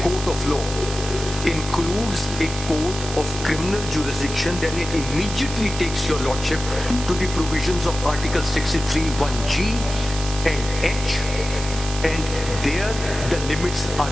court of law includes a court of criminal jurisdiction, then it immediately takes your Lordship to the provisions of Article 63, 1G and H, and there the limits are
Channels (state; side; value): noise; right; hiss, 9 dB below the sound